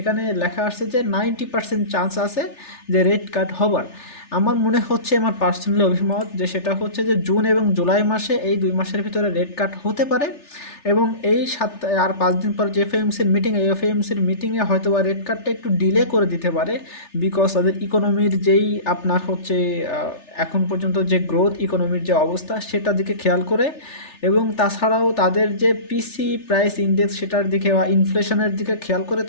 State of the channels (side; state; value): right; late; 3.4 ms